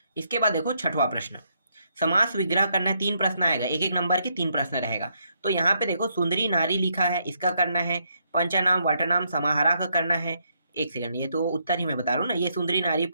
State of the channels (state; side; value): inverted; both; correlation -0.75